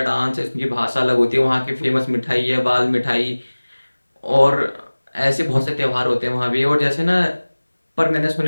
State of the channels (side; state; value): both; inverted; correlation -1.00